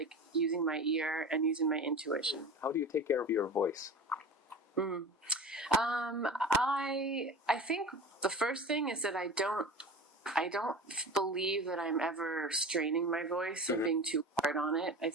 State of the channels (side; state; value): both; normal; correlation 0.33